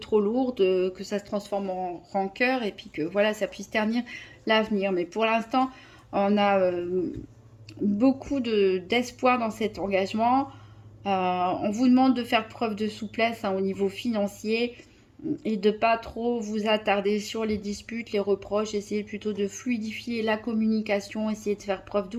lourdes, que ça se transforme en rancœur et puis que voilà, ça puisse ternir l'avenir. Mais pour l'instant, on a beaucoup d'espoir dans cet engagement. On vous demande de faire preuve de souplesse, hein, au niveau financier et de pas trop vous attarder sur les disputes, les reproches. Essayez plutôt de fluidifier la communication, essayez de faire preuve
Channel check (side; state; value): both; identical; correlation 1.00